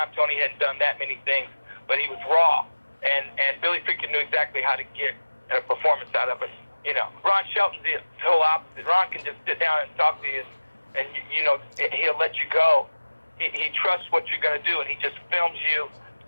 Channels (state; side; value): inverted; both; correlation -1.00